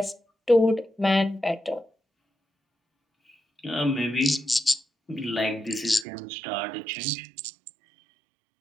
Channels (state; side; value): drops out; left; at 6.1 s